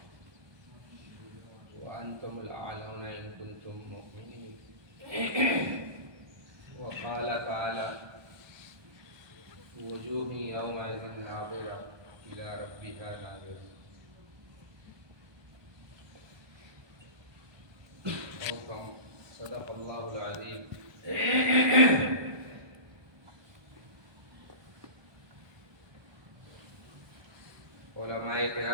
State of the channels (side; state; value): left; late; 1.2 ms